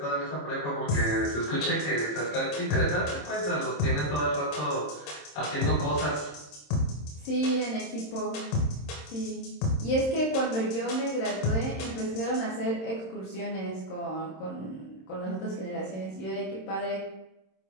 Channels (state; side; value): late; right; 26 ms